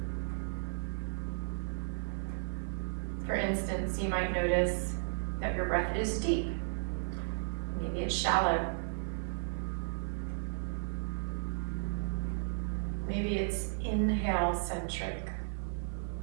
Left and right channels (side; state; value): left; silent; 55 dB below the other